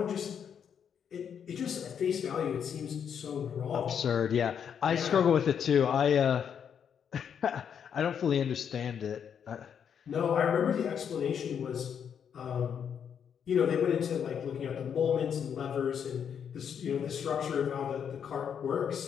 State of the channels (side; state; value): right; quieter; 7.9 dB